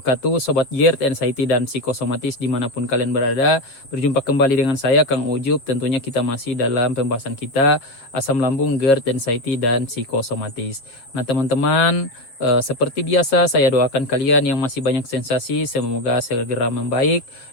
Sobat GERD, Anxiety, dan Psikosomatis dimanapun kalian berada. Berjumpa kembali dengan saya, Kang Ujub. Tentunya kita masih dalam pembahasan kita asam lambung, GERD, Anxiety, dan Psikosomatis. Nah teman-teman, seperti biasa saya doakan kalian yang masih banyak sensasi, semoga segera membaik.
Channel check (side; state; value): right; late; 7.5 ms